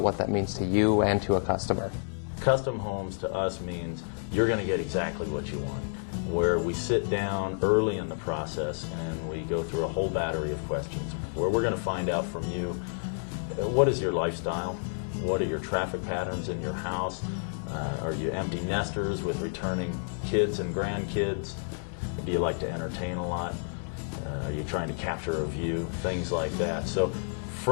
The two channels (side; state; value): right; silent; digital silence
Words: what that means to you and to a customer. Custom homes to us means you're going to get exactly what you want, where we sit down early in the process and we go through a whole battery of questions, where we're going to find out from you, what is your lifestyle? What are your traffic patterns in your house? Are you empty nesters with returning kids and grandkids? Do you like to entertain a lot? Are you trying to capture a view? Things like that. So